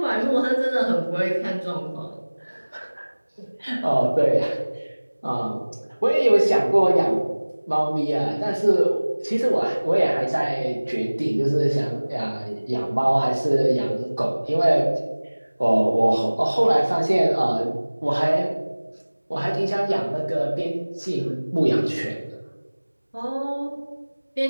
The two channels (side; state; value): both; inverted; correlation -1.00